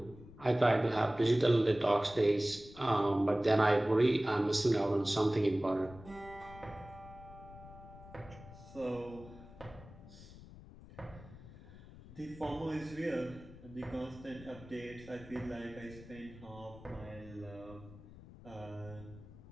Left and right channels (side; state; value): left; noise; rumble, 18 dB below the sound